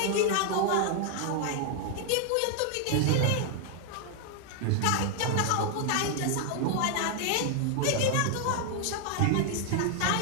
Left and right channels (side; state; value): both; different; correlation 0.00